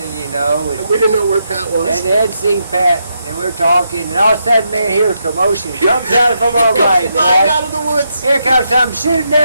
And We didn't know where Pat was. they hadn't seen Pat, and we were talking, and all of a sudden, man, here a commotion comes out from our right, Flying boy. out of the woods. Here comes something shooting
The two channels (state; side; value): inverted; both; correlation -0.81